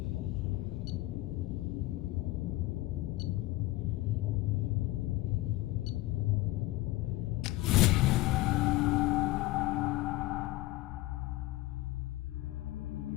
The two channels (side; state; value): right; quieter; 18.4 dB